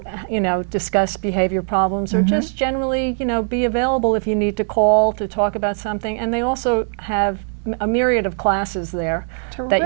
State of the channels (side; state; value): left; silent; 60 dB below the other